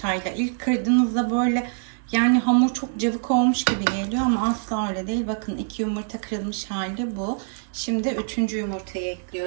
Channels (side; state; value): left; silent; digital silence